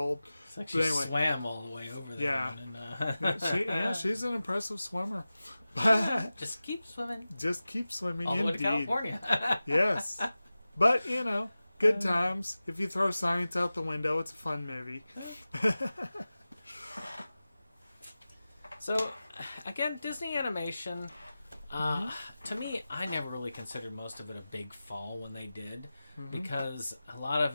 It's like she swam all the way over there. Yeah. She's an impressive swimmer. Just keep swimming. Just keep swimming, all the way indeed. to California. Yes. But, good times. If you throw science out the window, it's a fun movie. So, again, Disney animation, to me, I never really considered most of it a big fall when they did, because a lot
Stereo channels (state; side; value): inverted; both; correlation -0.96